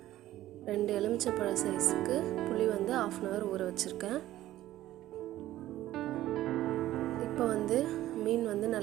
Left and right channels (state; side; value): quieter; left; 14.5 dB